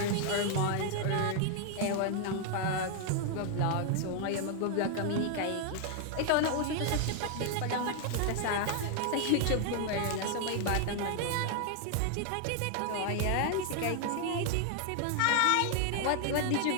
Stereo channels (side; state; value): both; different; correlation 0.00